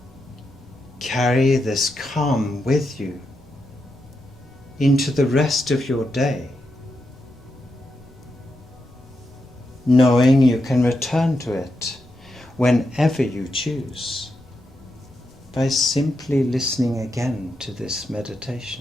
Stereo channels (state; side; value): normal; both; correlation 0.85